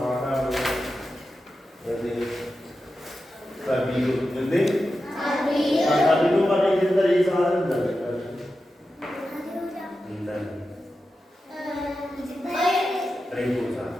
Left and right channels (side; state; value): both; normal; correlation 0.91